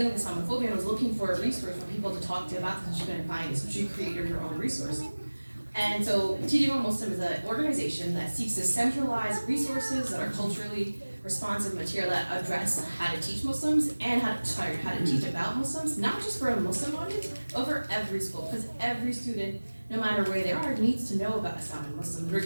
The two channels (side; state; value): both; inverted; correlation -1.00